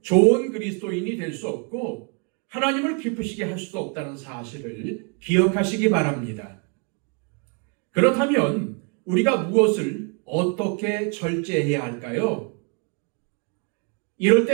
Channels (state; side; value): quieter; left; 35.1 dB